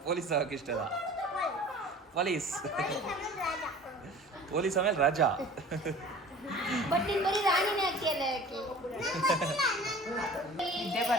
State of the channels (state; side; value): normal; both; correlation 0.43